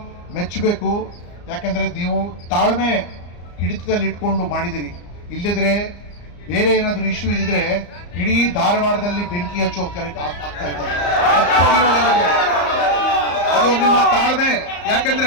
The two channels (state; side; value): late; right; 34 ms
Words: ಮೆಚ್ಚಬೇಕು, ಯಾಕಂದ್ರೆ ನೀವು ತಾಳ್ಮೆ ಹಿಡಿತದಲ್ಲಿ ಇಟ್ಕೊಂಡು ಮಾಡಿದಿರಿ. ಇಲ್ಲದ್ರೆ ಬೇರೆ ಏನಾದ್ರು ಇಶ್ಯೂ ಇದ್ರೆ ಇಡೀ ಧಾರವಾಡದಲ್ಲಿ ಬೆಂಕಿ ಹಚ್ಚೋ ಆಗ್ತಾ ಇದ್ದಾರೆ. ಅದು ನಿಮ್ಮ ತಾಳ್ಮೆ.